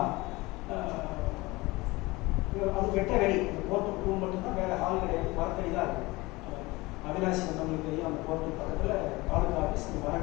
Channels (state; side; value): quieter; right; 22.0 dB